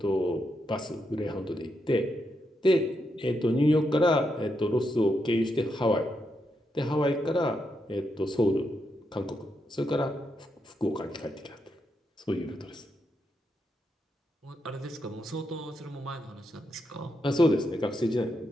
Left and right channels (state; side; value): normal; both; correlation 0.82